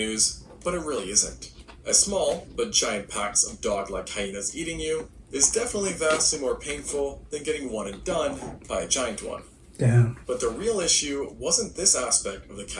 but it really isn't. As small but giant packs of dog-like hyenas eating you is definitely vastly more painful than getting one and done by a giant one. Damn. But the real issue wasn't this aspect of the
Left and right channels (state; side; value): identical; both; correlation 1.00